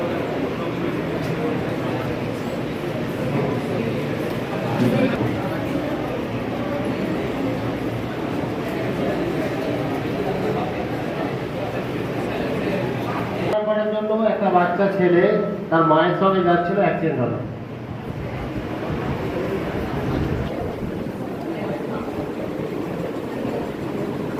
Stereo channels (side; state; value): both; identical; correlation 1.00